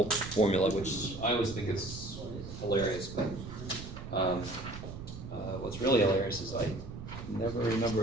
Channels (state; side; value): noise; right; rumble, 11 dB below the sound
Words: formula, which I always think is hilarious, but what's really hilarious is I never